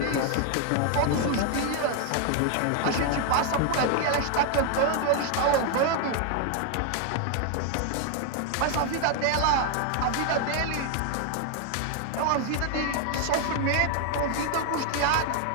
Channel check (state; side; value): different; both; correlation 0.00